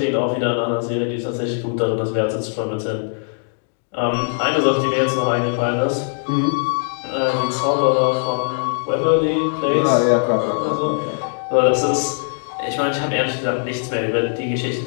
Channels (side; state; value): right; silent; 65 dB below the other